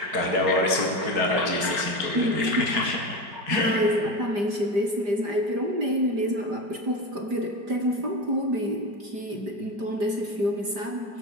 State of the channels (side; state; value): left; late; 5.0 ms